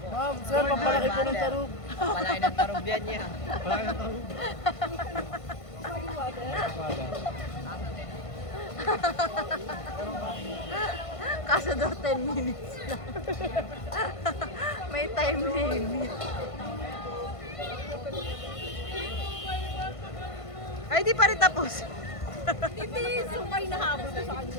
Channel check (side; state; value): right; late; 1.5 ms